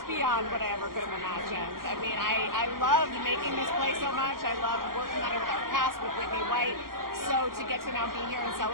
beyond what I ever could have imagined. I mean, I loved making this play so much. I loved working on it with our cast, with Whitney White. So to get to now be here and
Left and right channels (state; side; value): late; left; 0.92 ms